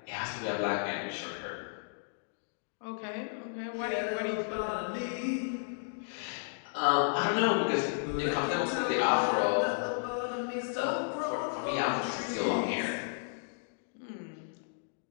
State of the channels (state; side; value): silent; right; digital silence